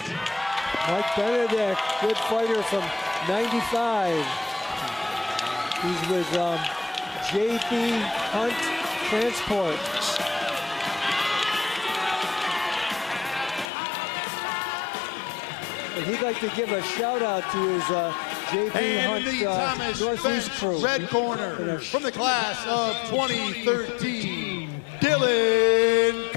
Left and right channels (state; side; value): drops out; right; at 13.7 s